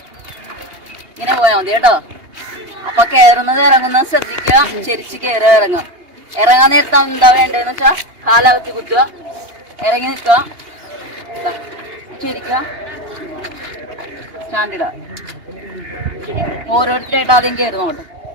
ഇങ്ങനെ പോയാൽ മതി കേട്ടോ. അപ്പൊ കയറുന്നത് ഇറങ്ങുന്നത് ശ്രദ്ധിക്കുക. ചെരിച്ച് കയറുക, ഇറങ്ങുക. ഇറങ്ങാൻ നേരത്തെ എന്താ വേണ്ടതെന്ന് വെച്ചാൽ കാലകത്തി കുത്തുക, ഇറങ്ങി നിൽക്കുക, ചെരിക്കുക, സ്റ്റാൻഡിടുക. ഓരോരുത്തരായിട്ട് ആദ്യം കയറുന്നോട്ടെ.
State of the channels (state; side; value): late; left; 2.8 ms